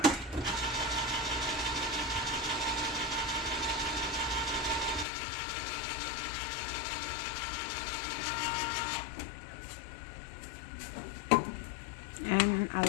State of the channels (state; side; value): drops out; right; at 5.1 s